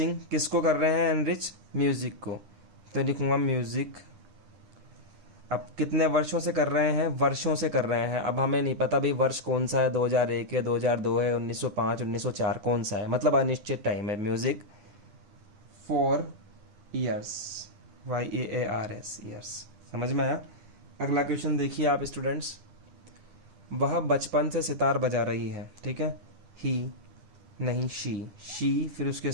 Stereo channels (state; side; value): late; left; 10 ms